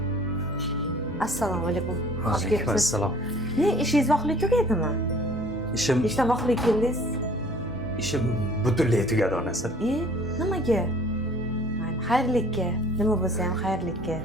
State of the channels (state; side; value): normal; both; correlation 0.52